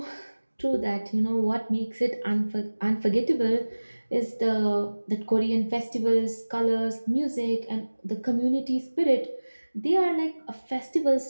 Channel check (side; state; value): both; inverted; correlation -1.00